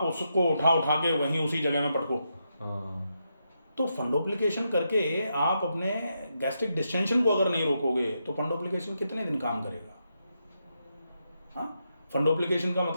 उसको उठा के वहीं उसी जगह में पटको। तो फंडोप्लिकेशन करके आप अपने गैस्ट्रिक डिस्टेंशन को अगर नहीं रोकोगे तो फंडोप्लिकेशन कितने दिन काम करेगा? हाँ, फंडोप्लिकेशन का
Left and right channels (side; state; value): both; inverted; correlation -0.83